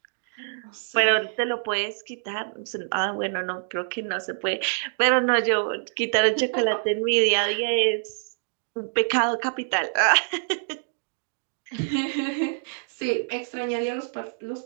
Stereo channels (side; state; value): left; silent; digital silence